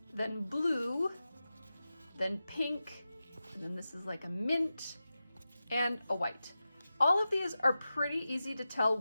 then blue, then pink, and then this is like a mint, and a white. All of these are pretty easy to tell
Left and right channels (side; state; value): both; inverted; correlation -0.93